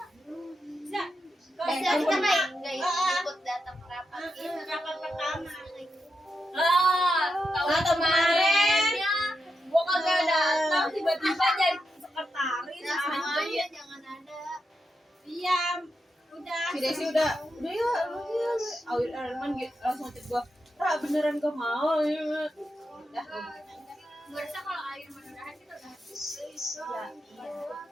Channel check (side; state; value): both; normal; correlation 0.86